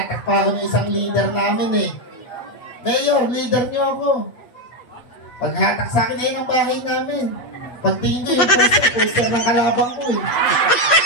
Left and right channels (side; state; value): right; late; 8.4 ms